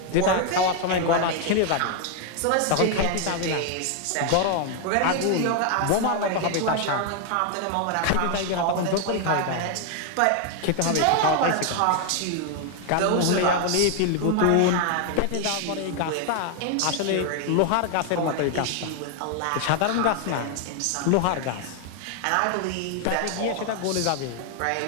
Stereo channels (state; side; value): different; both; correlation 0.00